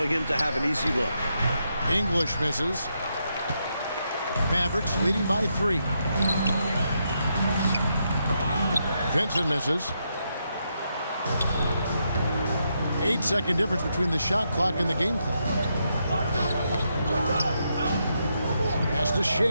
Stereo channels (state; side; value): inverted; both; correlation -0.81